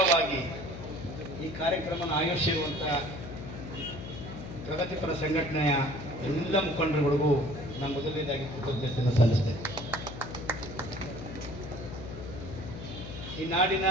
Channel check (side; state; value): left; noise; hum, 10 dB below the sound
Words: ಈ ಕಾರ್ಯಕ್ರಮವನ್ನು ಆಯೋಜಿಸಿರುವಂಥ ಪ್ರಗತಿಪರ ಸಂಘಟನೆಯ ಎಲ್ಲ ಮುಖಂಡರುಗಳಿಗೂ ನಾನು ಮೊದಲನೇದಾಗಿ ಕೃತಜ್ಞತೆಯನ್ನು ಸಲ್ಲಿಸ್ತೇನೆ. ಈ ನಾಡಿನ